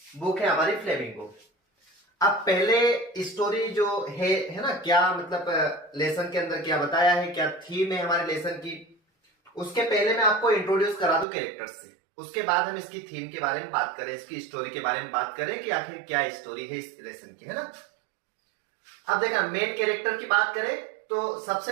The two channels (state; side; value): drops out; left; at 11.2 s